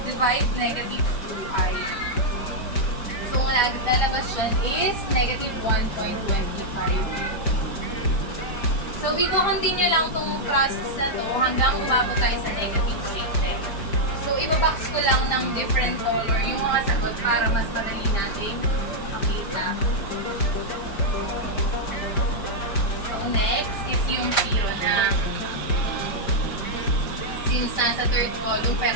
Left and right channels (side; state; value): right; late; 5.1 ms